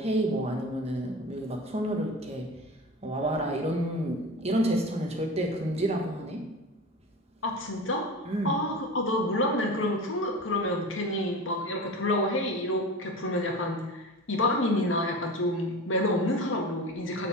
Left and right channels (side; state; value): both; normal; correlation 0.32